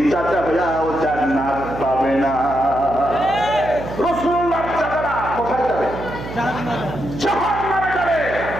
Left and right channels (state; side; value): noise; right; hum, 10 dB below the sound